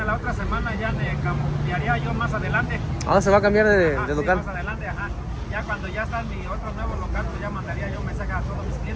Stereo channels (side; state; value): both; identical; correlation 1.00